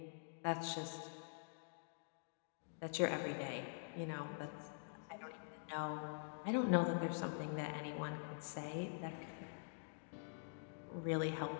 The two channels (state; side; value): silent; right; digital silence